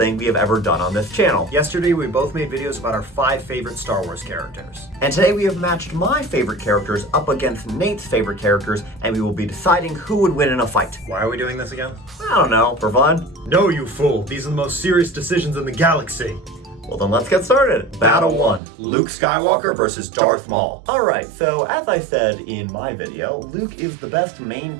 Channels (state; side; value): drops out; left; at 18.6 s